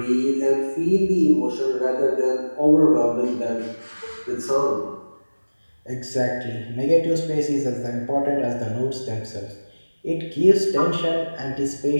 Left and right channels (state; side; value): inverted; both; correlation -1.00